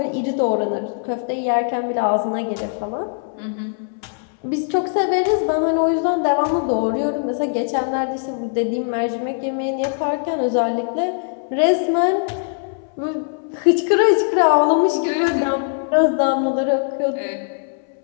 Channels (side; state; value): right; silent; 64 dB below the other